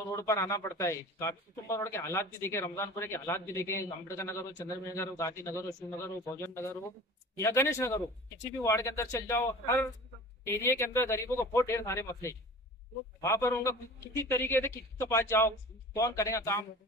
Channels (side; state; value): both; normal; correlation 0.40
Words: रोड पर आना पड़ता है। काफी कुटुंब रोड के हालात भी देखे, रमजानपुरे के हालात भी देखे, अम्बेडकर नगर हो, चंद्रमेर नगर हो, गांधी नगर हो, शिवनगर हो, भोजन नगर हो या गणेश नगर हो, किसी भी वार्ड के अंदर चल जाओ, हर एरिया के अंदर गरीबों को बहुत ढेर सारे मसले। वहां पर उनका किसी तरीके से किसी के पास जाओ, कौन करेगा काम,